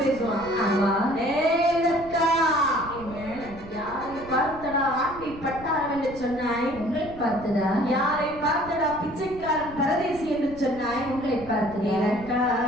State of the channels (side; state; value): right; noise; rumble, 17 dB below the sound